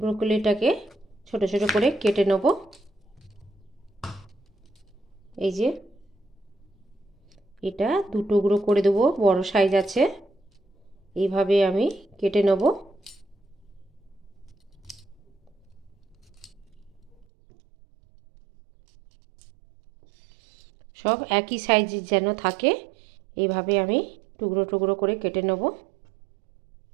ছোট ছোট করে কেটে নেব। এই যে এটা দু টুকরো করে দেবো, বড় সাইজ আছে। এইভাবে আমি কেটে নেব। সব একই সাইজের যেন থাকে, এইভাবে আমি টুকরো টুকরো করে কেটে নেব।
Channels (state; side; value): drops out; left; at 17.2 s